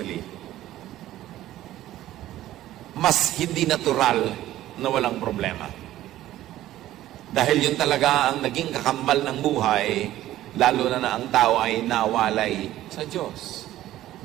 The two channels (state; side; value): quieter; left; 14.2 dB